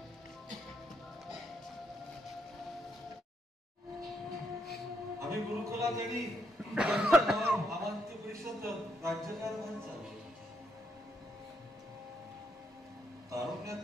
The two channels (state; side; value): normal; both; correlation 0.76